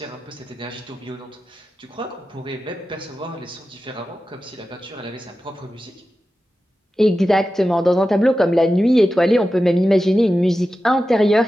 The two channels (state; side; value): normal; both; correlation 0.93